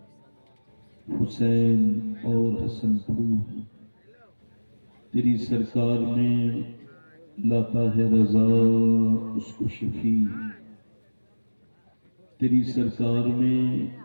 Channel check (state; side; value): inverted; both; correlation -1.00